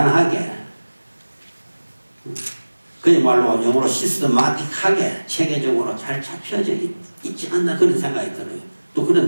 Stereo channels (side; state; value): both; inverted; correlation -1.00